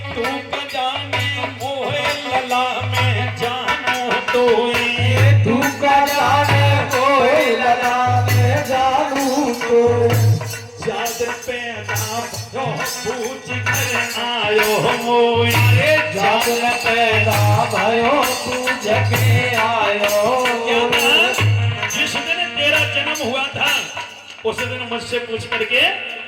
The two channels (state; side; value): identical; both; correlation 1.00